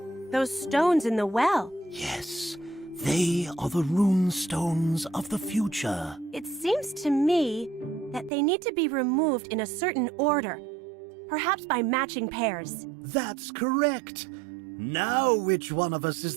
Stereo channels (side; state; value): left; drops out; at 8.3 s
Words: Those stones in the well. Yes, they are the rune stones of the future. It seems to me that they need to be removed in a certain order, perhaps by matching pairs. That's correct. Now which one of us